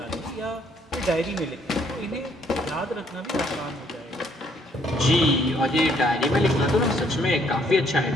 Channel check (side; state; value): both; normal; correlation 0.66